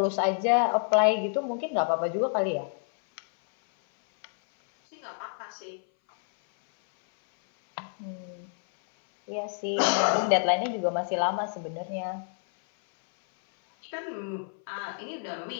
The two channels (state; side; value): silent; right; 59 dB below the other